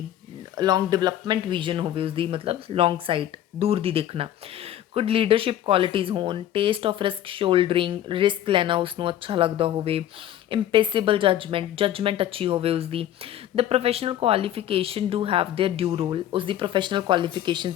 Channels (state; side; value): quieter; right; 11.8 dB